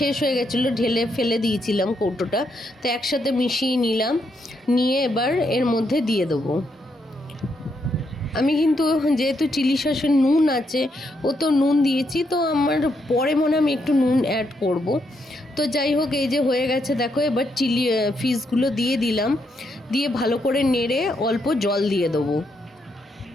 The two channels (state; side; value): normal; both; correlation 0.78